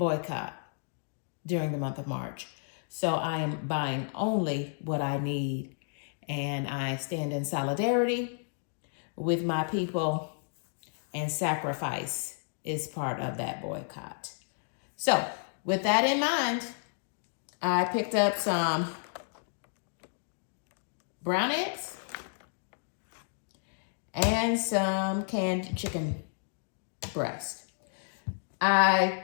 during the month of March. So I am buying only what I need, and I stand in solidarity with my people, and sacrifice is part of that boycott. So, with that in mind, I picked up some brown eggs and some canned chicken breast. I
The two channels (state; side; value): silent; right; digital silence